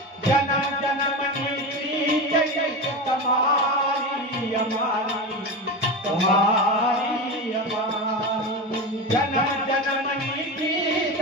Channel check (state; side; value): normal; both; correlation 0.22